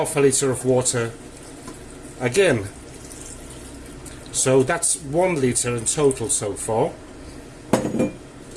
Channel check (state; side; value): identical; both; correlation 1.00